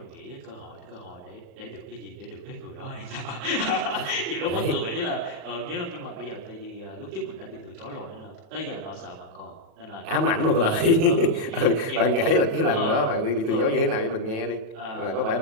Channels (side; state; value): left; late; 36 ms